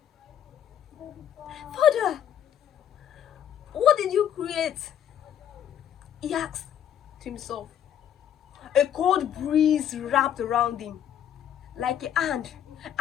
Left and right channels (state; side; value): quieter; right; 9.9 dB